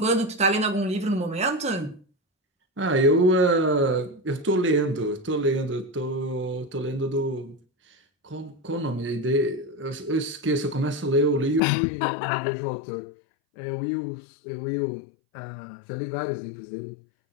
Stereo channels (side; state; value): right; drops out; at 11.6 s